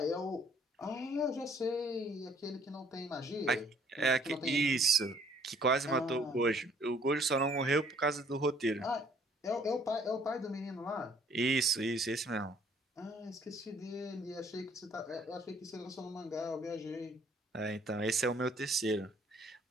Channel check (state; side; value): normal; both; correlation 0.60